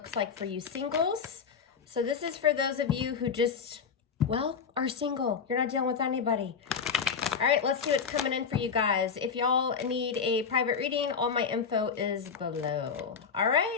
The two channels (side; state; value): right; quieter; 6.1 dB